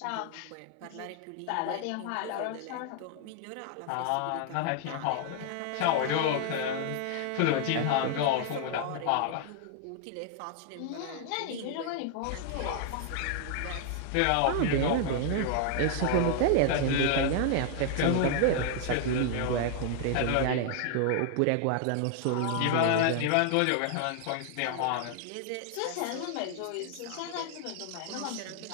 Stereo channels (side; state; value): both; different; correlation 0.00